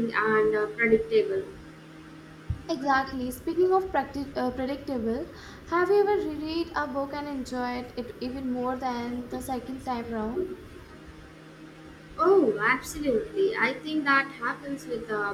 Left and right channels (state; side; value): identical; both; correlation 1.00